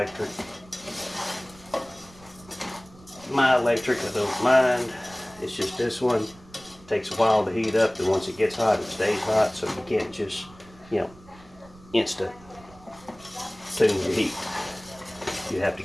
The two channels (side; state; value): right; noise; rumble, 23 dB below the sound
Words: My electric, I don't mind. It's just this one takes a while to heat up, and once it gets hot, it stays hot, so you can't just, instant tune your heat. You have to